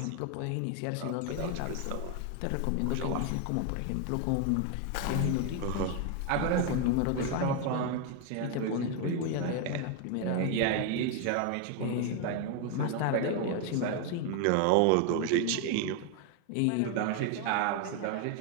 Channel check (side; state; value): both; different; correlation 0.01